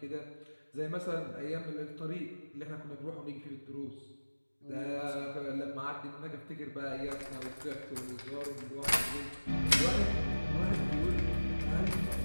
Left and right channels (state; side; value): inverted; both; correlation -1.00